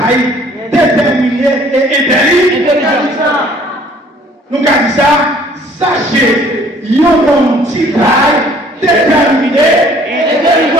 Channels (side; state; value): both; normal; correlation 0.56